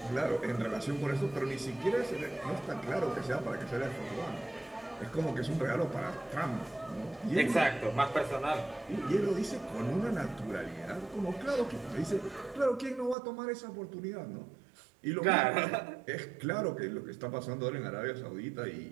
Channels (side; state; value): left; drops out; at 13.2 s